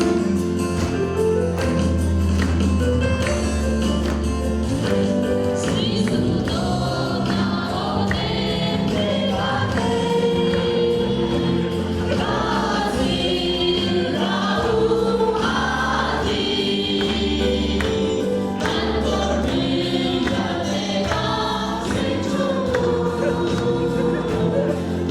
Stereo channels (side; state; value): both; identical; correlation 1.00